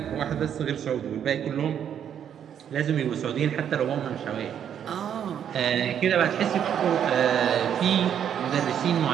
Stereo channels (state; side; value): quieter; left; 9.0 dB